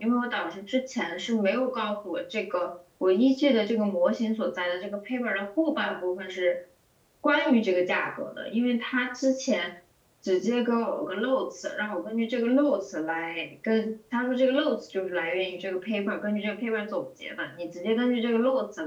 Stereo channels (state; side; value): identical; both; correlation 1.00